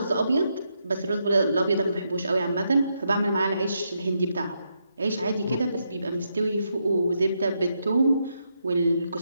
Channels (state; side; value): inverted; both; correlation -0.81